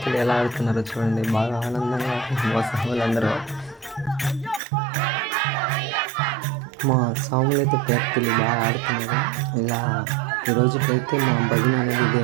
ఎలా ఆడుతున్నారో చూడండి, బాగా ఆనందంగా మా స్వాములందరూ. మా స్వాములు అయితే పేరుతలు బాగా ఆడుతున్నారు. ఇలా ఈరోజుకైతే మా భజన అనేది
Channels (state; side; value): drops out; left; at 4.6 s